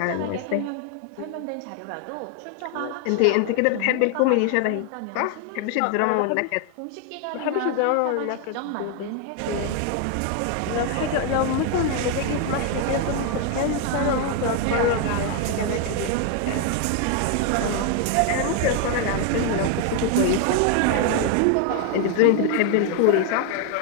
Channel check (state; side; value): different; both; correlation 0.01